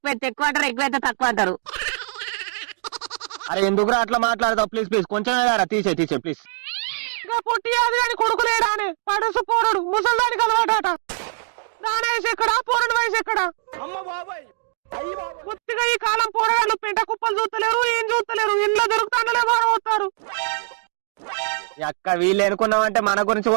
అయితే ఎక్కువ అంటారు, ఎక్కువ అయితే తక్కువ అంటారు. అరే ఎందుకురా అట్లా మాట్లాడతావు? ప్లీజ్ కొంచెం తీసే ప్లీజ్. ఇంకా పొట్టి అది అని కొడుకులేడా అని పడుసు పోరడు ముసల్దానికి అలవాట. దాని వయసు ఎక్కడా, పోరడు వయసు ఎక్కడా? కొద్దిగా ఈ కాలం పోరగాళ్ళు పెంట కుప్పలు చూస్తలేరు, ఏం చూస్తలేరు. ఇంట్లో దొరుకుతాండలే బాగా అక్క వీళ్ళు ఎనుకున్నామంటే మన గురించి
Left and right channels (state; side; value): silent; left; digital silence